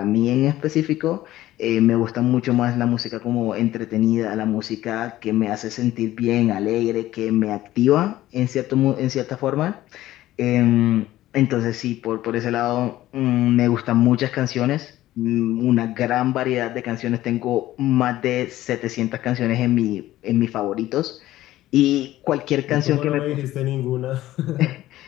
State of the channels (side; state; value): right; quieter; 15.0 dB